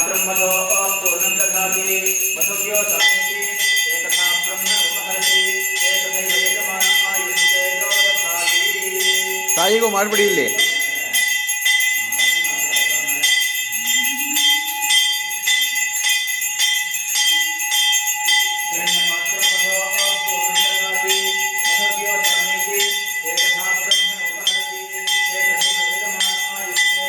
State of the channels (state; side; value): identical; both; correlation 1.00